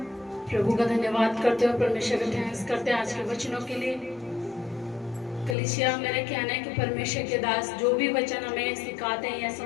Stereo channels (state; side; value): drops out; right; at 5.6 s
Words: प्रभु का धन्यवाद करते हो, परमेश्वर का थैंक्स करते हैं आज के वचनों के लिए। कलीसिया, मेरा कहना है कि परमेश्वर के दास जो भी वचन हमें सिखाते हैं या